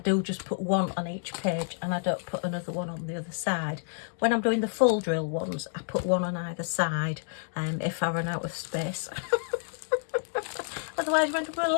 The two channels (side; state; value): right; silent; 58 dB below the other